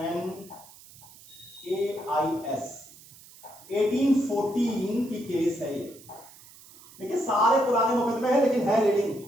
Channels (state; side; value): noise; right; hiss, 22 dB below the sound